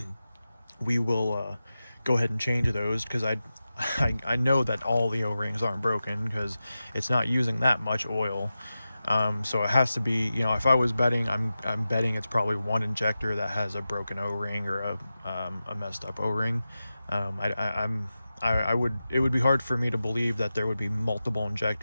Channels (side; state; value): both; inverted; correlation -0.93